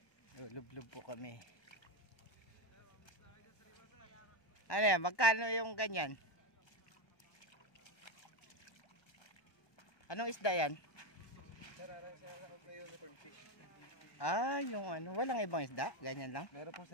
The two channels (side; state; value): right; late; 1.2 ms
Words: Lulub-lub po kami. Ano yan? Magkano yung ganyan? Anong isda yan? Yung ano, walang ibang isda? Ganyan lang? Meron po